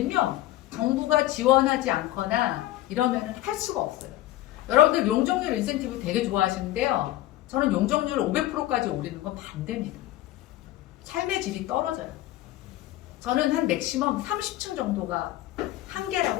정부가 지원하지 않거나 이러면은 할 수가 없어요. 여러분들 용적률 인센티브 되게 좋아하시는데요, 저는 용적률 500%까지 올리는 건 반대입니다. 삶의 질이 떨어져요. 저는 한 맥시멈 30층 정도가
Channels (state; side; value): quieter; right; 15.5 dB